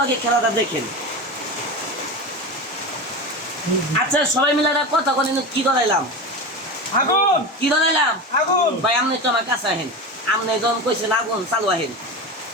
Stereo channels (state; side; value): normal; both; correlation 0.24